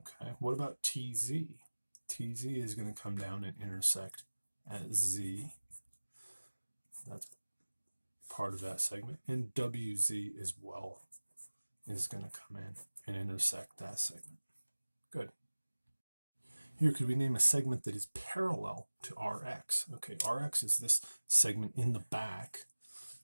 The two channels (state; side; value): inverted; both; correlation -1.00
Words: what about TZ? TZ is going to come down and intersect at Z. That's part of that segment. And WZ as well is going to come in and intersect that segment. Good. Here, could we name a segment that is parallel to RX? Okay, RX is this segment in the back